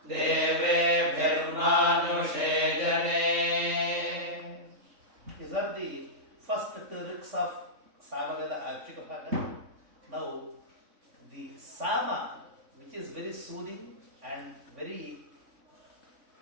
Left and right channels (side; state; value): left; late; 3.6 ms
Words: Deve Bhirmanushe Jane. These are the first two riks of Samaveda Archika Bhaga. Now, the Sama, which is very soothing and